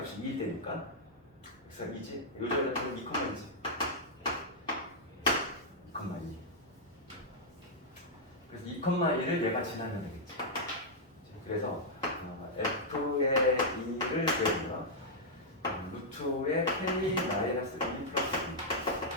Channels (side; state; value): both; normal; correlation -0.06